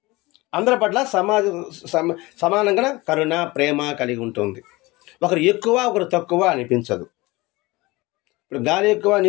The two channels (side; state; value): right; quieter; 21.9 dB